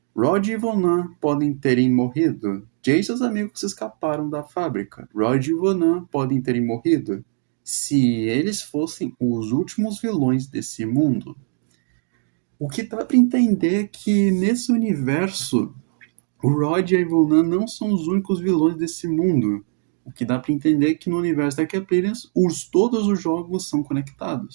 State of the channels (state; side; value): silent; left; digital silence